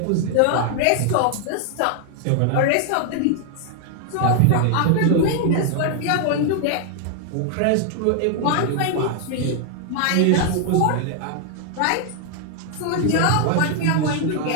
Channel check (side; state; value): both; different; correlation 0.00